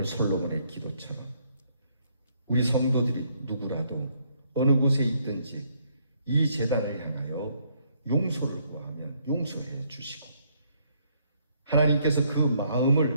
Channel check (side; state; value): both; inverted; correlation -0.69